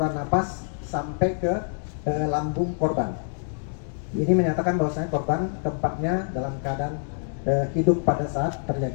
napas sampai ke lambung korban. Ini menyatakan bahwasanya korban keempatnya dalam keadaan hidup pada saat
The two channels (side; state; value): right; silent; digital silence